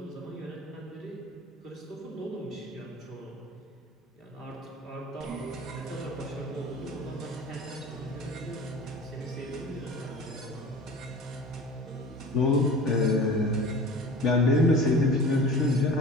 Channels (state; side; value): normal; both; correlation 0.40